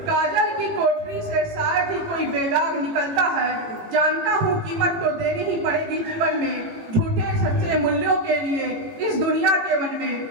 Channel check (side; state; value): left; late; 18 ms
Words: कोठरी से शायद ही कोई बेदाग निकलता है। जानता हूँ कीमत तो देनी ही पड़ेगी जीवन में, झूठे सच्चे मूल्यों के लिए इस दुनिया के वन में।